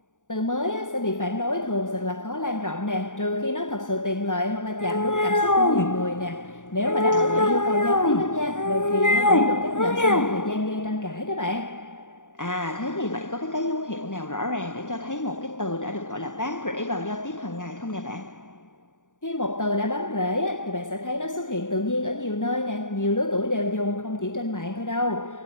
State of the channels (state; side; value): late; right; 0.87 ms